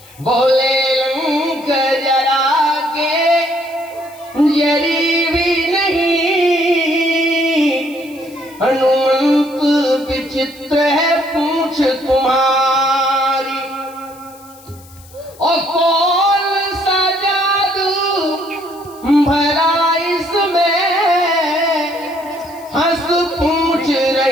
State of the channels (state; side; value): noise; left; hiss, 24 dB below the sound